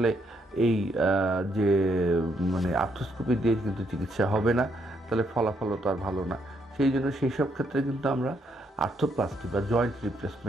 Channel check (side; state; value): both; normal; correlation 0.74